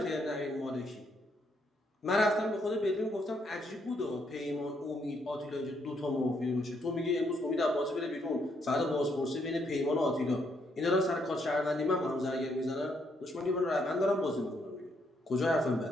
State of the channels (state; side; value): normal; both; correlation 0.74